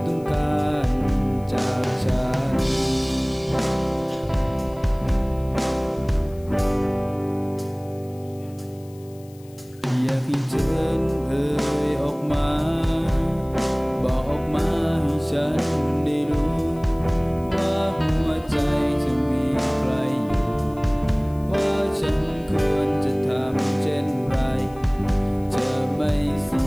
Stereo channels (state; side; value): noise; left; hiss, 27 dB below the sound